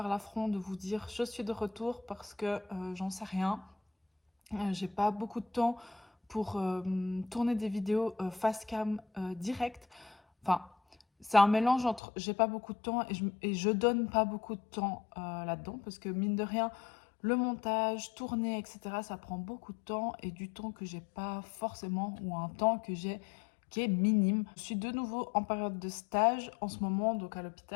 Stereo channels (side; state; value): right; drops out; at 12.0 s